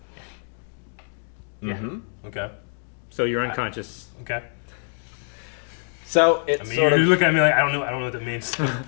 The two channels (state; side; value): silent; right; digital silence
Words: Mm-hmm. Okay. So you're unconscious. Okay. So it's I mean, sort you of look at me like I don't know what that means. You're